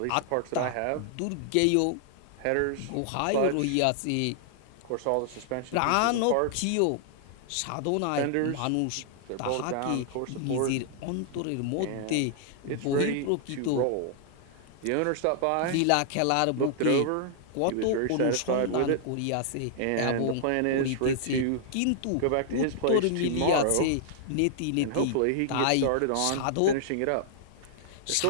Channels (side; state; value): both; different; correlation -0.01